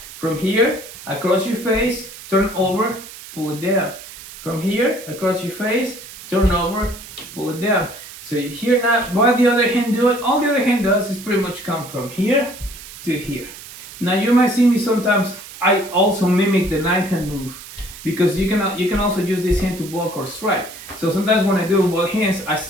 From here, across your face, turn over, pull it down. From here, across your face, turn over, pull it down. So here now, what the other hand do it? All the other hand does is pretty much come from here to here. Now you might see me sometimes, I also mimic the knife hand move because you can also use this hand to block or strike. So sometimes when I do both hands,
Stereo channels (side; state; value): right; noise; hiss, 15 dB below the sound